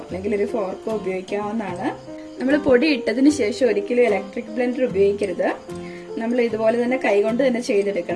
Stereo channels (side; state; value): both; identical; correlation 1.00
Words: അല്ലെങ്കിൽ ഒരു ഫോർക്കോ ഉപയോഗിക്കാവുന്നതാണ്. നമ്മൾ പൊടി ഇട്ടതിന് ശേഷം ഒരിക്കലും ഇലക്ട്രിക് ബ്ലെൻഡർ ഉപയോഗിക്കരുത്. നമ്മൾ ഇതുപോലെ തന്നെ കൈകൊണ്ട് തന്നെ